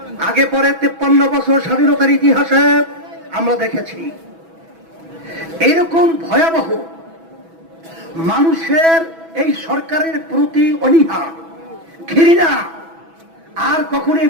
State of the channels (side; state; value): left; late; 6.1 ms